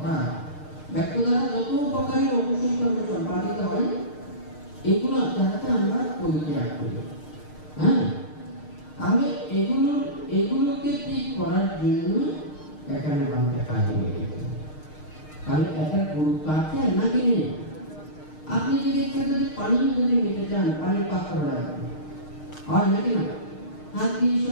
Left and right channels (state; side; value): late; right; 6.5 ms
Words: ব্যক্ত দ্বারা যত প্রকারের অকুশল কর্ম সম্পাদিত হয়, এগুলো যাতে আমরা পরিত্যাগ করি, হ্যাঁ, তাহলে এগুলোকে ঠিক করার জন্য এখানে আমাদের কাজে লেগেছে। তাহলে একটা গুরুত্ব আছে নাকি নেই? আপনি যদি পানি যদি নিতে চান, পানির পাত্র রাখবেন, হয় নাকি না? হাত দিয়ে